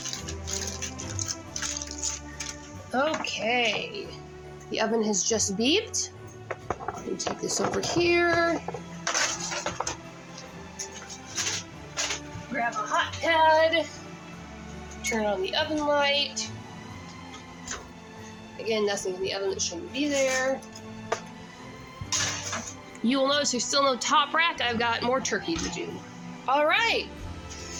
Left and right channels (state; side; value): identical; both; correlation 1.00